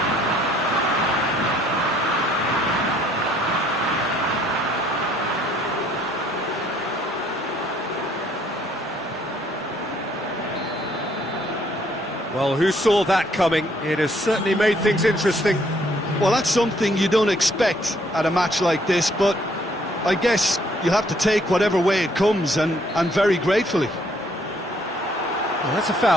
Well, who saw that coming? It has certainly made things interesting. Well, that's something you don't expect at a match like this, but I guess you'll have to take whatever way it comes, and very gratefully. Well, that's a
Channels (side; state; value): both; normal; correlation 0.65